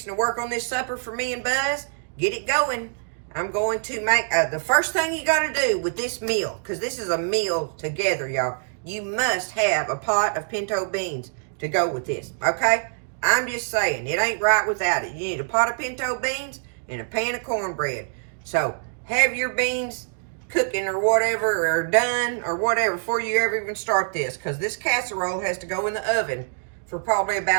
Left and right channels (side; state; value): left; silent; digital silence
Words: to work on this supper for me and Buzz. Get it going. I'm going to make, the first thing you got to do with this meal, because this is a meal together, y'all. You must have a pot of pinto beans to go with this, okay? I'm just saying, it ain't right without it. You need a pot of pinto beans and a pan of cornbread. So, have your beans cooking or whatever, or done, or whatever, before you ever even start this. Because this casserole has to go in the oven for probably